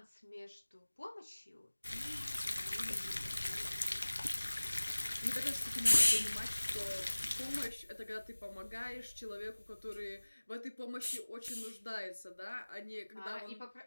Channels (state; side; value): inverted; both; correlation -1.00